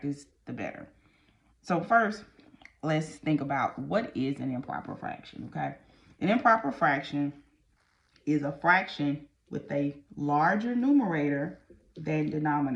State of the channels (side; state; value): both; identical; correlation 1.00